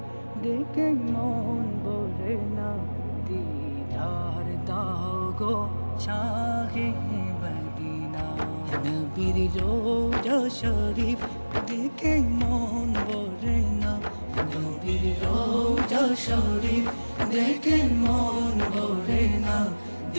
দেখে মন ভরে না, দিদার দাও গো শাহে মদিনা। নবীর রোজা শরীফ দেখে মন ভরে না, নবীর রোজা শরীফ দেখে মন ভরে না,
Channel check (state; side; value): inverted; both; correlation -1.00